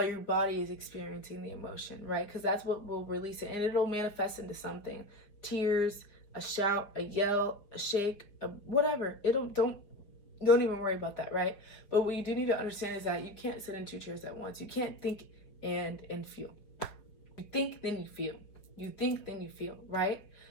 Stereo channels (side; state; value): right; late; 5.1 ms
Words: your body is experiencing the emotion, right? Because that's what will release it, and it'll manifest into something. Tears, a shout, a yell, a shake, whatever. Don't even worry about that, right? But what you do need to understand is that you can't sit in 2 chairs at once. You can't think and feel. You think, then you feel. You think, then you feel, right?